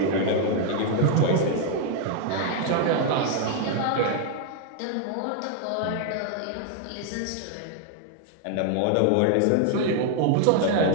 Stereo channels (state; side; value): different; both; correlation 0.00